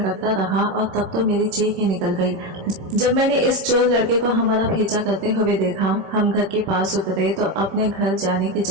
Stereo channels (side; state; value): left; late; 26 ms